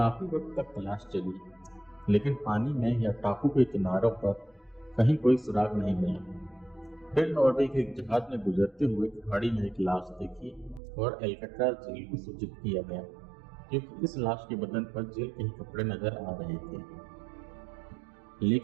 वक्त तक तलाश चली, लेकिन पानी में या टापू के किनारों पर कहीं कोई सुराग नहीं मिला। फिर नॉर्वे के एक जहाज में गुजरते हुए खाड़ी में एक लाश देखी और एल्कट्राज जेल को सूचित किया गया क्योंकि इस लाश के बदन पर जेल के ही कपड़े नजर आ रहे थे।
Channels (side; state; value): left; drops out; at 10.8 s